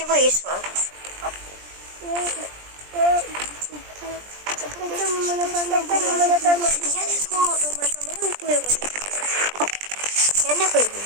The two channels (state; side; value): late; left; 20 ms